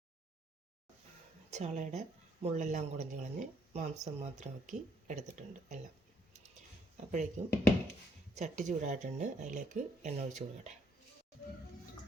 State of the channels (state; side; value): normal; both; correlation 0.70